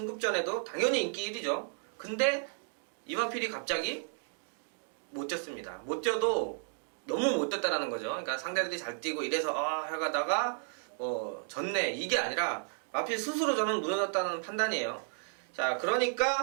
당연히 인기 1위죠. 근데 이 마필이 갑자기 못 뛰었습니다. 못 뛰어도 너무 못 뛰었다라는 거죠. 그러니까 상대들이 잘 뛰고 이래서 해가다가 졌네, 이게 아니라 마필 스스로 저는 무너졌다는 판단이에요. 자,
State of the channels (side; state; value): left; silent; 56 dB below the other